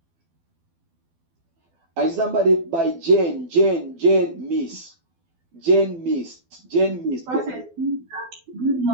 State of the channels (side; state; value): left; late; 12 ms